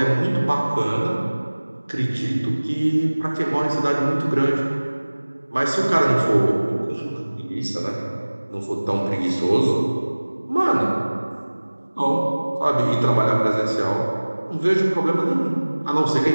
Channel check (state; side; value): inverted; both; correlation -1.00